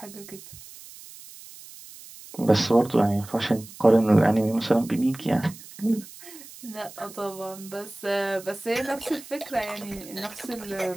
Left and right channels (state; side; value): noise; right; hiss, 17 dB below the sound